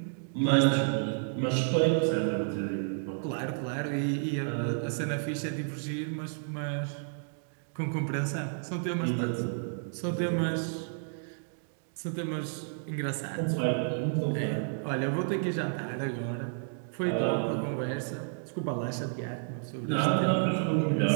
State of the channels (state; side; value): silent; left; digital silence